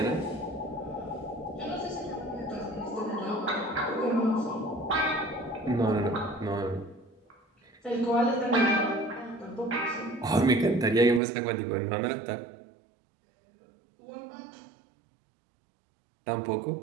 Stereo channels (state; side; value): drops out; left; at 11.2 s